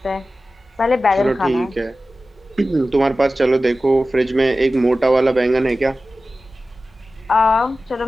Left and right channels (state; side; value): normal; both; correlation 0.95